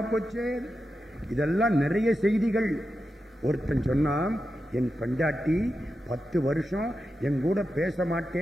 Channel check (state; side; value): normal; both; correlation 0.89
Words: போச்சு. இதெல்லாம் நிறைய செய்திகள். ஒருத்தன் சொன்னான், என் பெண்டாட்டி 10 வருஷம் என் கூட பேச